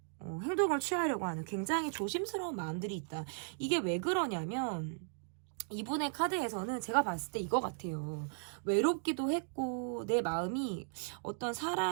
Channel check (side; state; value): left; silent; digital silence